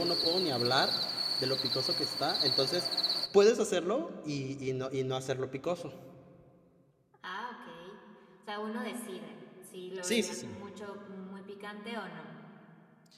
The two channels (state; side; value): identical; both; correlation 1.00